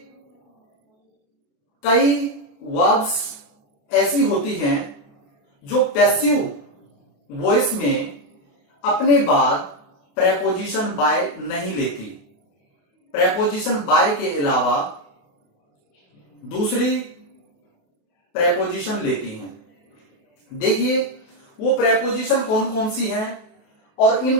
कई वर्ब्स ऐसी होती हैं जो पैसिव वॉइस में अपने बाद प्रेपोजिशन बाय नहीं लेती। प्रेपोजिशन बाय के अलावा दूसरी प्रेपोजिशन लेती हैं। देखिए वो प्रेपोजिशन कौन कौन सी हैं और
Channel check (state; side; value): late; right; 28 ms